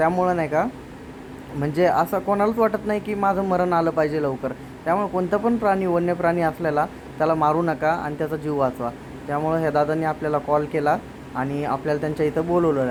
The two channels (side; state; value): both; identical; correlation 1.00